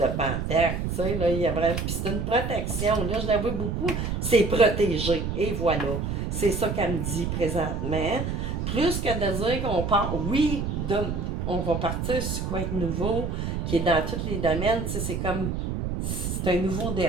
Panthère, tu sais, là, il y a vraiment. Puis c'est une protection. Là, je la vois beaucoup. C'est protégé. Et voilà. C'est ça qu'elle me dit présentement. Plus que de dire qu'on part. Oui, on va partir sur quoi être nouveau, qui est dans tous les domaines. Tu sais, c'est comme. C'est un nouveau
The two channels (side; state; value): right; noise; rumble, 2 dB below the sound